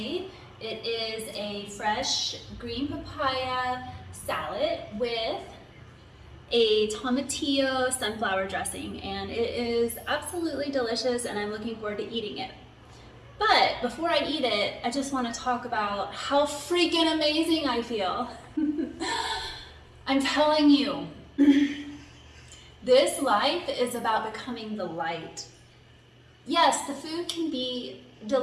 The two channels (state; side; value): identical; both; correlation 1.00